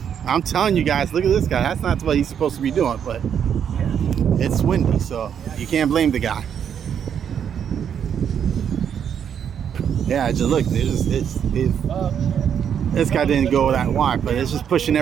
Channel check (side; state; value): left; quieter; 8.3 dB